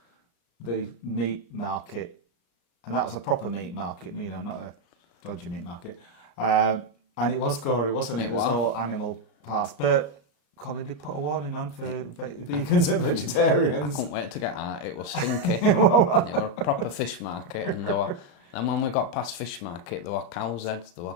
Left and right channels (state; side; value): late; right; 34 ms